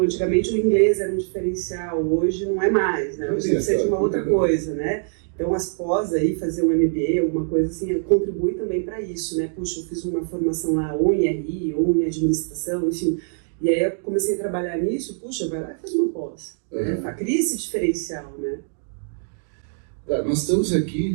antigamente o inglês era um diferencial, hoje não é mais, né? Hoje precisa de uma outra coisa, né? Então as pós aí, fazer um MBA, alguma coisa assim, contribui também para isso, né? Puxa, eu fiz uma formação lá ou em RI, ou em administração, enfim. E aí eu comecei a trabalhar nisso, puxa, vai lá e faz uma pós, né? Cria esse diferencial, né? Tá, nós estamos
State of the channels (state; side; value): silent; left; digital silence